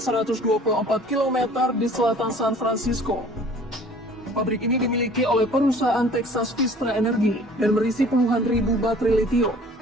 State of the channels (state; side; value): normal; both; correlation 0.49